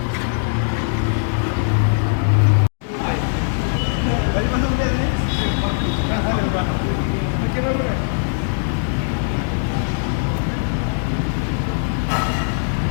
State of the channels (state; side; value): silent; right; digital silence